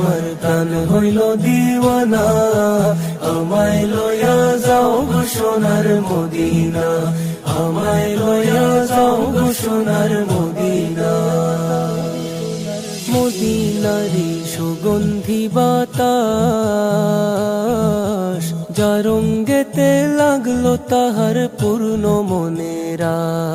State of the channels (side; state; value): both; identical; correlation 1.00